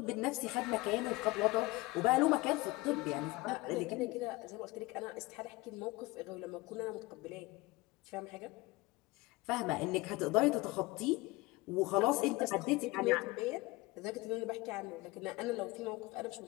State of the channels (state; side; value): quieter; right; 21.9 dB